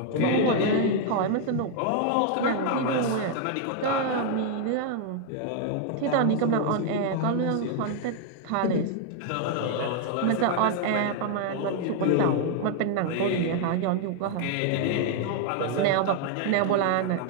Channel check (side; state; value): both; different; correlation 0.00